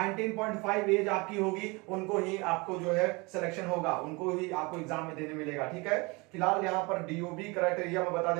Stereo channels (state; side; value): quieter; left; 26.5 dB